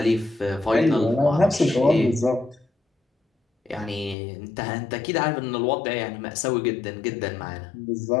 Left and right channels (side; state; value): right; drops out; at 4.2 s